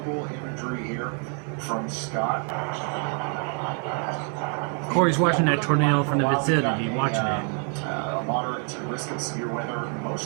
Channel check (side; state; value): left; quieter; 37.7 dB